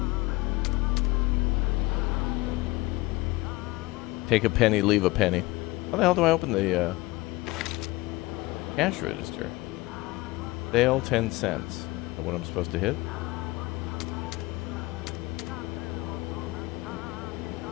Take a penny, leave a penny. How the hell do I open the cash register? Sale 10 cents. Is that what I'm supposed to hit?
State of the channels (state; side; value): quieter; right; 21.2 dB